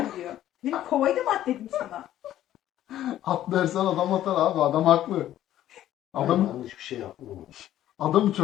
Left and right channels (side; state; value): right; quieter; 12.7 dB